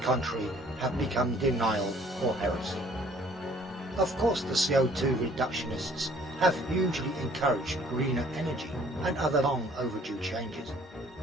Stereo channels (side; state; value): both; normal; correlation 0.57